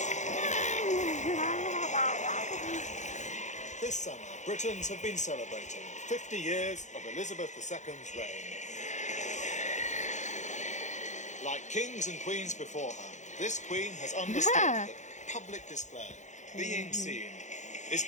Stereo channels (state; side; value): late; right; 0.35 ms